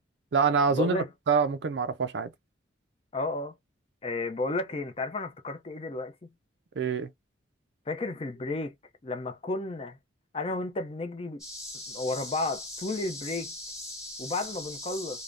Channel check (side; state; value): both; normal; correlation 0.09